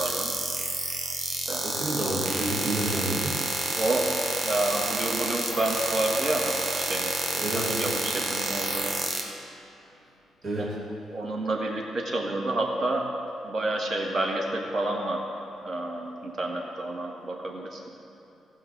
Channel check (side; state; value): both; normal; correlation 0.80